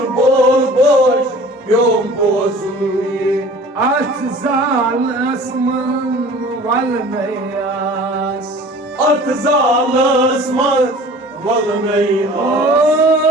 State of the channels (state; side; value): normal; both; correlation 0.45